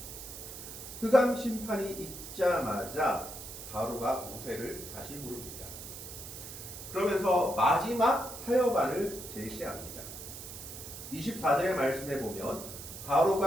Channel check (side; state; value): right; noise; hiss, 11 dB below the sound